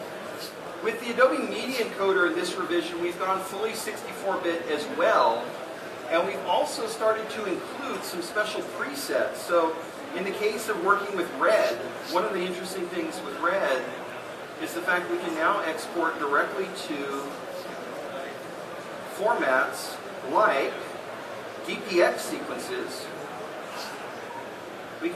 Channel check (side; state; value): both; identical; correlation 1.00